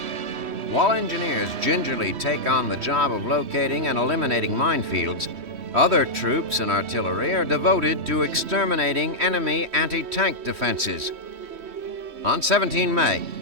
While engineers gingerly take on the job of locating and eliminating minefields, other troops and artillery are devoted to exterminating enemy anti-tank defenses. On 17 May,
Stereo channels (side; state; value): left; late; 3.1 ms